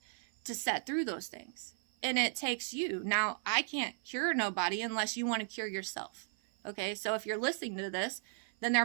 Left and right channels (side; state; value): left; silent; 54 dB below the other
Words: to set through those things. And it takes you. Now, I can't cure nobody unless you want to cure yourself. Okay, so if you're listening to this, then there